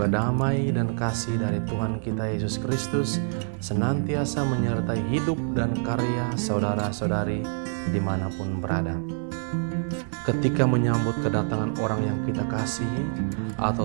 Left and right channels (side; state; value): left; silent; digital silence